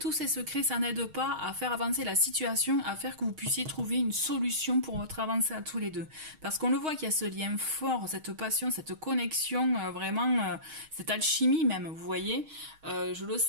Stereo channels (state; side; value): late; left; 6.4 ms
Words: ces secrets, ça n'aide pas à faire avancer la situation, à faire que vous puissiez trouver une solution pour votre avancée à tous les deux. Parce qu'on le voit qu'il y a ce lien fort, cette passion, cette connexion, vraiment, cette alchimie même, vous voyez. Je le